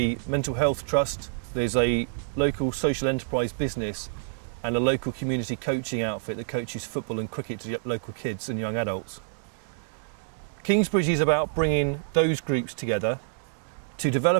mental health trust, there's a local social enterprise business and a local community coaching outfit that coaches football and cricket to local kids and young adults. Kingsbridge is about bringing those groups together to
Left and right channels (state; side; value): silent; left; digital silence